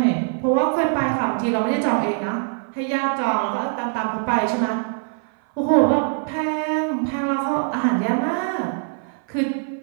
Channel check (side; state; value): left; silent; 57 dB below the other